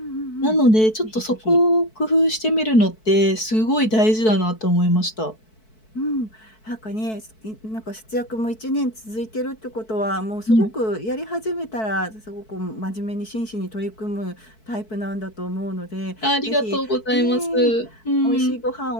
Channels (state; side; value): late; right; 4.6 ms